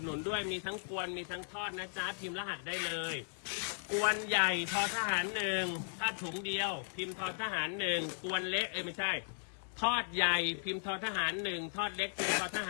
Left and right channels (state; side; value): silent; right; 53 dB below the other